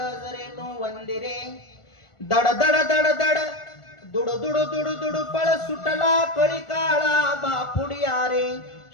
वंदिरे दड दड दड दड दुड दुड दुड दुड पळ सुटला कळी काळा बापुडिया रे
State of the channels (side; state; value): right; late; 1.4 ms